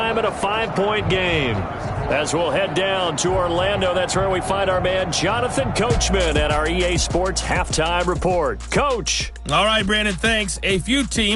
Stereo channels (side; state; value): both; identical; correlation 1.00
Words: at a 5-point game. As we'll head down to Orlando, that's where we find our man Jonathan Coachman at our EA Sports Halftime Report. Coach. All right, Brandon, thanks. A few